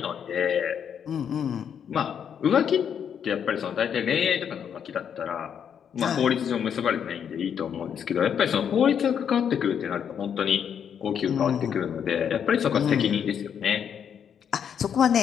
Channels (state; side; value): quieter; right; 8.1 dB